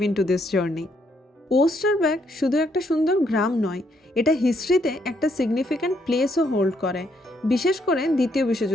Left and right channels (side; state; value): both; normal; correlation 0.73